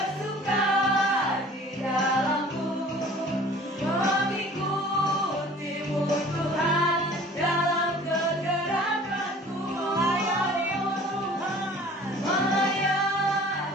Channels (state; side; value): normal; both; correlation 0.48